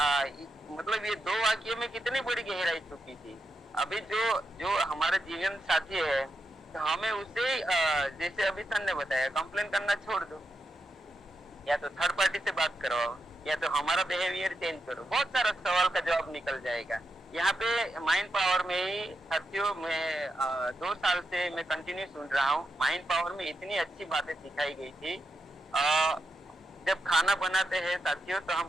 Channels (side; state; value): both; normal; correlation 0.86